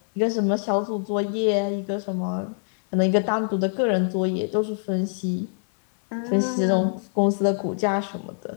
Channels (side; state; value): right; silent; 62 dB below the other